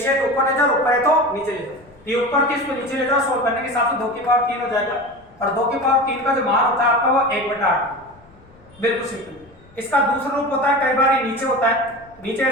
है तो ऊपर ले जाओ, ऊपर है तो नीचे ले जाओ। ये ऊपर की इसको नीचे ले जाओ, सोल्व करने के हिसाब से 2 की पावर 3 हो जाएगा, और 2 की पावर 3 का जो मान होता है आपका वो 1/8, बिल्कुल सिंपल। इसका दूसरा रूप होता है, कई बार ये नीचे होता है, नीचे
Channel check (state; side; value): noise; left; rumble, 27 dB below the sound